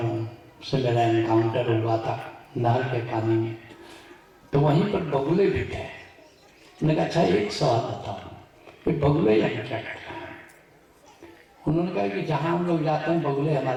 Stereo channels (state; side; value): identical; both; correlation 1.00